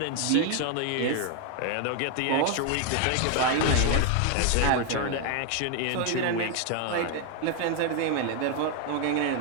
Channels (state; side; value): different; both; correlation 0.00